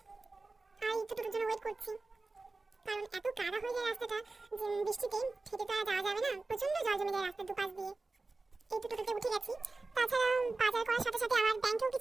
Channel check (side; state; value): left; quieter; 3.5 dB